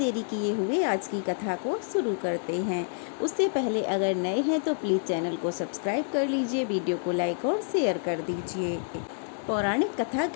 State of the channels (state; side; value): silent; right; digital silence